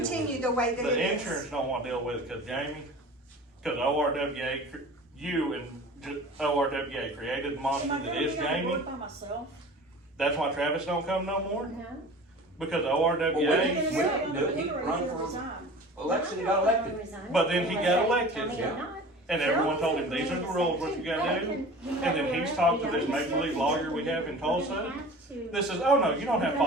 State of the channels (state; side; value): normal; both; correlation 0.40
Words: continue the way that it The is. insurance don't want to deal with it because Jamie, because ORWA, you and ORWA created the Am monster I that gonna is be on the Jamie. board by myself? That's why Travis don't come no more, No? because Well, we ORWA, didn't- You're gonna do it. He sit on the run board or for- resign? Election, he got elected. But then he got elected, yeah. and everyone told him, these are the rules, what you gotta do. And then he's talked to this make-believe lawyer we have in Tulsa. This is, oh no, you don't have to